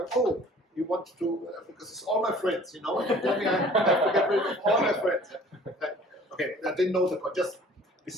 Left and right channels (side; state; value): both; normal; correlation 0.50